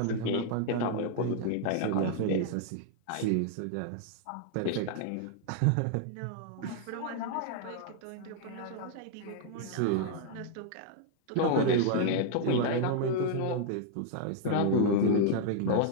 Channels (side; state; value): both; different; correlation -0.01